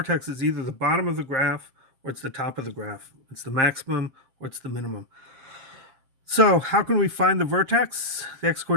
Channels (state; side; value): late; left; 7.5 ms